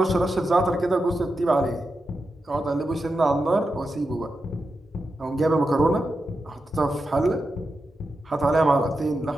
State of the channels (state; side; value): normal; both; correlation 0.89